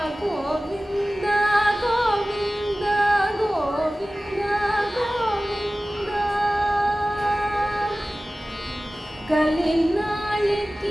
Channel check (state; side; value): normal; both; correlation 0.97